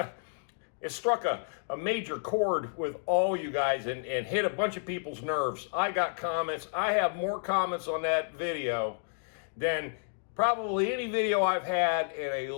it struck a major chord with all you guys and hit a bunch of people's nerves. I got comments. I have more comments on that video than probably any video I've had in a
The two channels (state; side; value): silent; right; digital silence